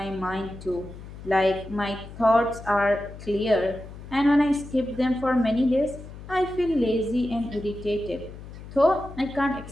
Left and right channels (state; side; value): noise; left; hum, 14 dB below the sound